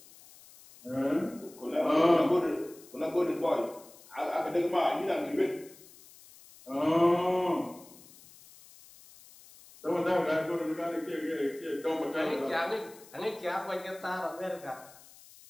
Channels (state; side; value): noise; left; hiss, 22 dB below the sound